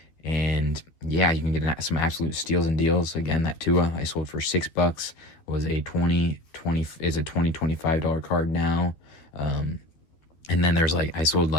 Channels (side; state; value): right; late; 12 ms